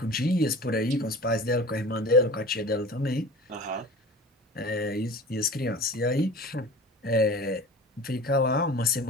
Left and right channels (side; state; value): both; normal; correlation 0.38